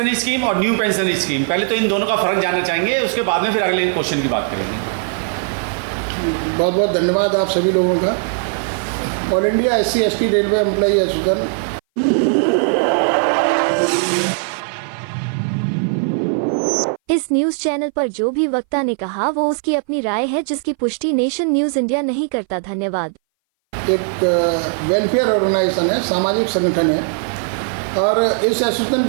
scheme और new pension scheme, पहले तो इन दोनों का फ़र्क जानना चाहेंगे, उसके बाद में फिर अगले क्वेश्चन की बात करेंगे। बहुत बहुत धन्यवाद आप सभी लोगों का। All India SC/ST railway employee association इस न्यूज चैनल पर जो भी वक्ता ने कहा वो उसकी अपनी राय है, जिसकी पुष्टि नेशन न्यूज इंडिया नहीं करता। धन्यवाद। एक वेलफेयर ऑर्गेनाइजेशन है, सामाजिक संगठन है, और इस एसोसिएशन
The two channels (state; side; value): silent; left; 60 dB below the other